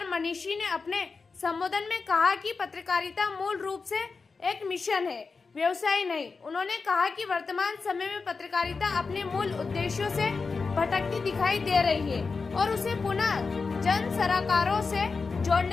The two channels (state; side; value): quieter; right; 4.6 dB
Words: मनीषी ने अपने संबोधन में कहा कि पत्रकारिता मूल रूप से एक मिशन है, व्यवसाय नहीं। उन्होंने कहा कि वर्तमान समय में पत्रकारिता अपने मूल उद्देश्यों से भटकती दिखाई दे रही है और उसे पुनः जन सरोकारों से